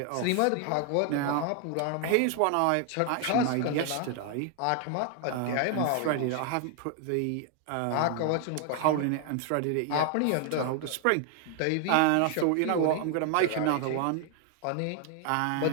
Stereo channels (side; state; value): both; different; correlation 0.00